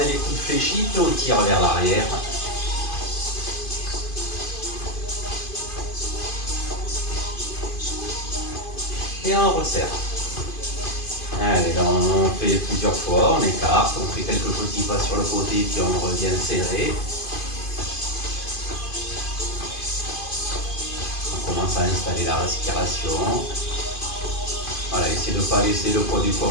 les coudes fléchis, puis on tire vers l'arrière. Et on resserre. Allez, là, on fait plusieurs fois, on écarte, on fait quelques petits pas sur le côté, puis on revient serré. On commence à installer la respiration. Voilà, essayez de ne pas laisser le poids du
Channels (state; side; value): late; right; 2.5 ms